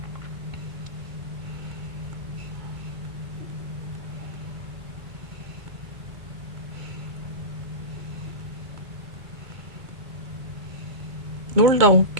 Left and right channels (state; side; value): late; left; 2.3 ms